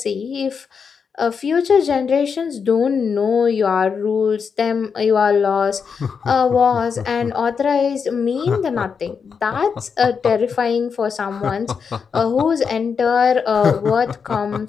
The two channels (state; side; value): quieter; right; 6.1 dB